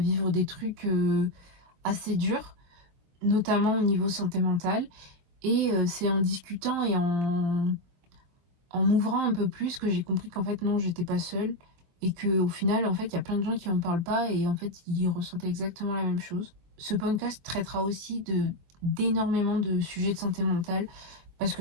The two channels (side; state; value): left; late; 23 ms